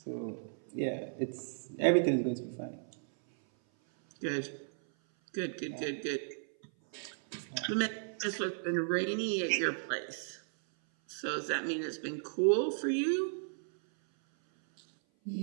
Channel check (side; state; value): left; silent; 55 dB below the other